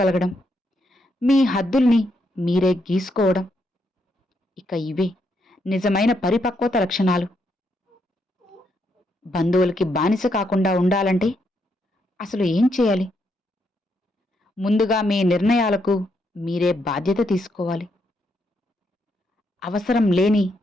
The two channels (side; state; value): both; normal; correlation 0.78